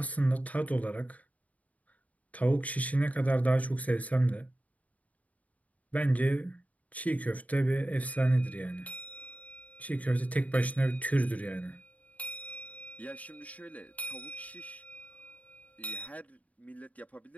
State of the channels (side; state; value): right; late; 0.070 ms